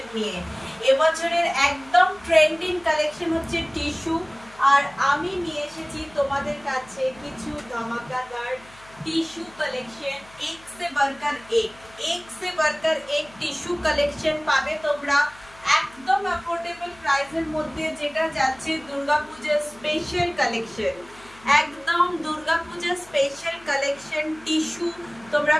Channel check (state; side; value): noise; left; hum, 24 dB below the sound